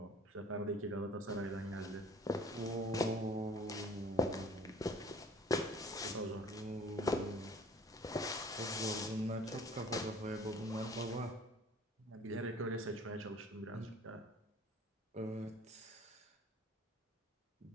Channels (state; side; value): normal; both; correlation 0.51